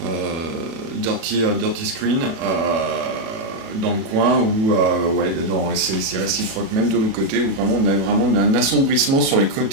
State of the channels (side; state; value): left; late; 36 ms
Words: dirty screen dans le coin où ouais, c'est réciproque même de l'autre côté où vraiment on a vraiment un assombrissement sur les